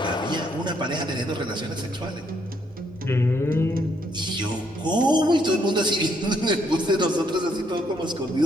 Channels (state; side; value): normal; both; correlation 0.72